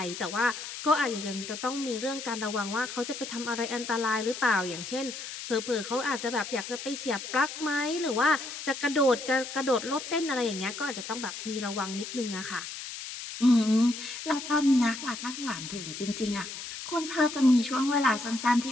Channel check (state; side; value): noise; left; hiss, 9 dB below the sound